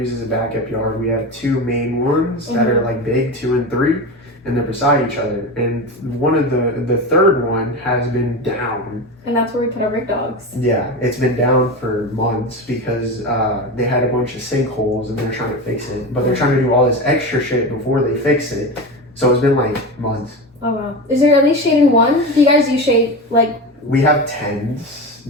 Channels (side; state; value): both; normal; correlation 0.23